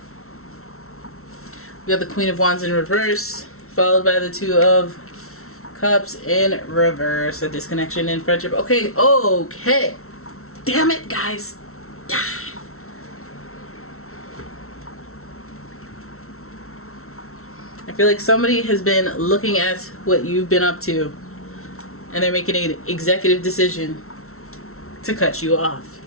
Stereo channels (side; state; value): right; late; 0.63 ms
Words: We got the Queen of Wands in reverse, followed by the Two of Cups in reverse. A disconnection in friendship. Okay, okay. Damn it, guys. I feel like somebody has been looking at what you've been up to and they're making an executive decision to cut you off.